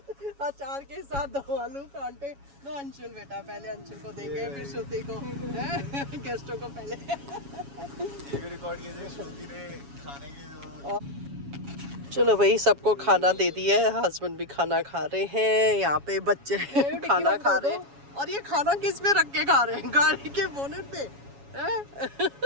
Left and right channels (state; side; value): late; left; 7.2 ms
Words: अचार के साथ दम आलू परांठे। लो अंशुल बेटा, पहले अंशुल को देंगे फिर श्रुति को, गेस्टों को पहले। रिकॉर्ड कीजिए श्रुति ने खाने की। चलो भाई सबको खाना दे दिया है, हस्बैंड भी खाना खा रहे हैं, यहाँ पे बच्चे खाना खा रहे हैं। और ये खाना किस पे रख के खा रहे हैं? गाड़ी के बोनेट पे।